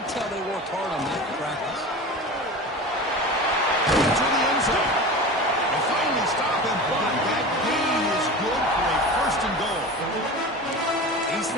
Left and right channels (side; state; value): both; normal; correlation 0.32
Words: tell they worked hard on that in practice. To the end zone. And finally stop him, but that gain is good for a first and goal. These are